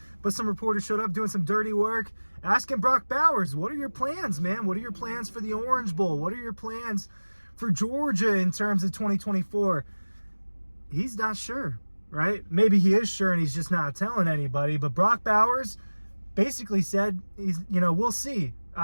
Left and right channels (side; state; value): both; inverted; correlation -1.00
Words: but some reporters showed up doing some dirty work, asking Brock Bowers, what are your plans, man? What are your plans for the Orange Bowl? What are your plans for Georgia in terms of 2024? He's not sure, right? Maybe he is sure and he's just not telling anybody, but Brock Bowers basically said, we'll see.